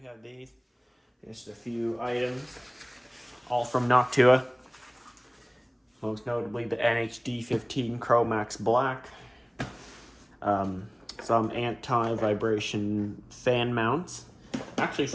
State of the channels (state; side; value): identical; both; correlation 1.00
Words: we have these. Just a few items, all from Noctua. Most notably the NH-D15 Chromax Black. Some anti-vibration fan mounts. Actually,